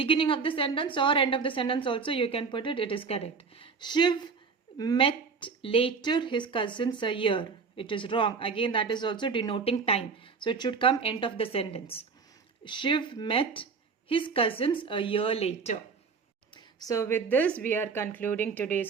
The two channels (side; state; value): left; quieter; 5.2 dB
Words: of the sentence or end of the sentence also you can put it. It is correct. Shiv met later his cousins a year. It is wrong. Again, that is also denoting time. So it should come end of the sentence. Shiv met his cousins a year later. So with this, we are concluding